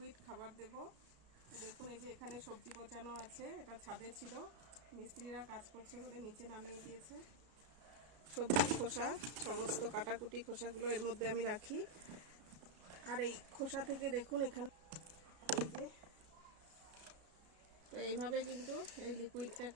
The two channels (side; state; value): left; late; 33 ms